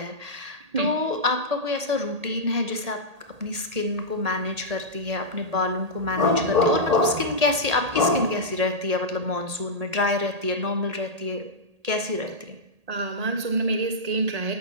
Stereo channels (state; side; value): late; left; 1.8 ms